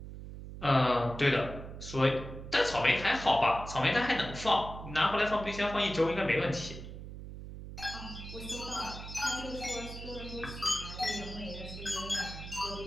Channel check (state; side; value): noise; right; hum, 11 dB below the sound